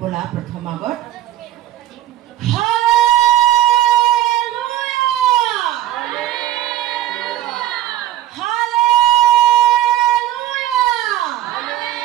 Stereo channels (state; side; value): quieter; left; 14.0 dB